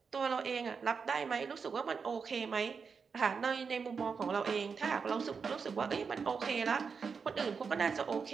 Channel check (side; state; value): left; quieter; 5.6 dB